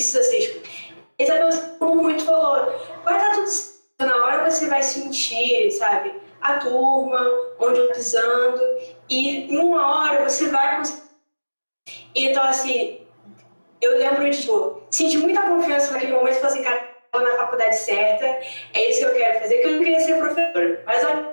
ser exposto. Isabel, como muito falou, vai dar tudo certo, na hora você vai sentir, sabe, a turma, onde eu pisando, e em uma hora você vai conseguir. Então, assim, eu lembro de, tipo, senti muita confiança naquele momento e falei assim, cara, estou na faculdade certa, é isso que eu quero fazer, que eu não queria ser professora, mas a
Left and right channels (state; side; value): inverted; both; correlation -1.00